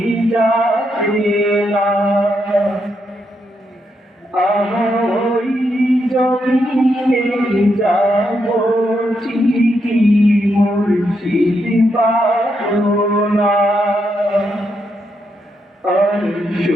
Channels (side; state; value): both; normal; correlation 0.80